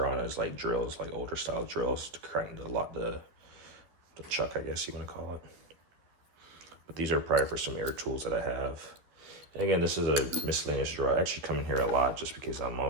on is like drills, like older style drills to crank the chuck, I guess you want to call it. But these are probably for some air tools that I have. And again, this is a miscellaneous drawer. I actually come in here a lot just because I'm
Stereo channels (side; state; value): left; late; 12 ms